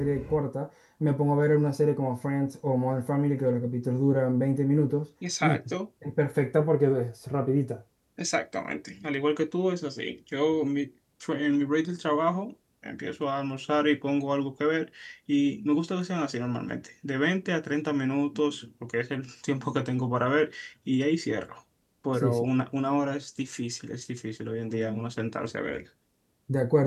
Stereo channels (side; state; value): both; identical; correlation 1.00